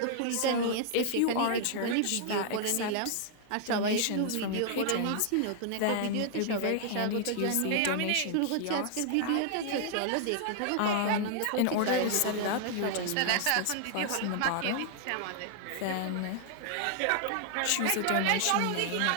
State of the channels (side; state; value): both; different; correlation -0.01